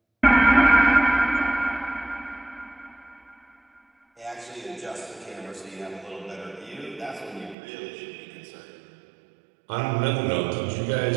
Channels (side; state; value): left; drops out; at 7.6 s